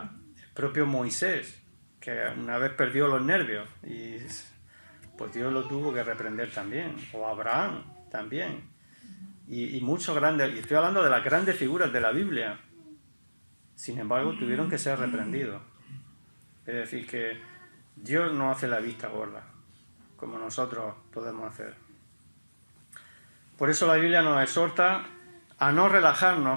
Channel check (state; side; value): inverted; both; correlation -1.00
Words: El propio Moisés, que una vez perdió los nervios y pues Dios lo tuvo que reprender también, o Abraham también, y muchos grandes, y estoy hablando de las grandes figuras de la Biblia, sin embargo tuvieron que ser reprendidos. Es decir, que Dios no hace la vista gorda, como nosotros podemos hacer. Por eso la Biblia nos exhorta a no